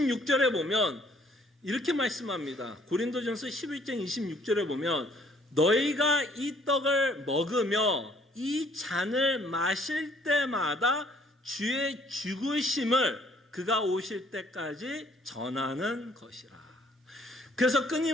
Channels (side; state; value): both; normal; correlation 0.61